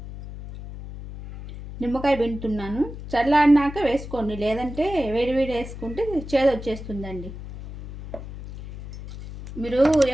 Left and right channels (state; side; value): noise; left; hum, 12 dB below the sound